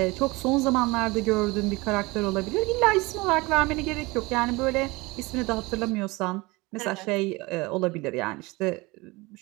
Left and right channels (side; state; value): left; quieter; 23.4 dB